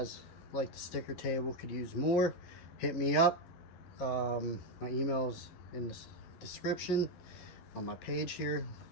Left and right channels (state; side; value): late; right; 12 ms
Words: like the sticker table, could use more, hit me up. My email's in the description on my page here.